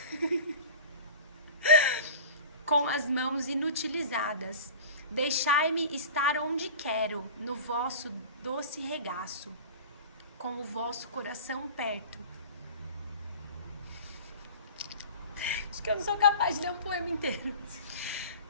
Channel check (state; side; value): inverted; both; correlation -0.38